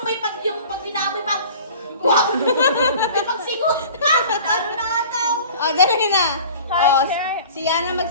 may pag yung pag binamoy pa? Wow! May pagsigot pa! Talo na ata ako. Dali na. Si Yana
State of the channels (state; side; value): inverted; both; correlation -0.43